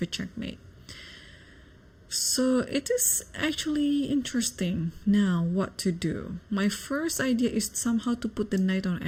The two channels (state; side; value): identical; both; correlation 1.00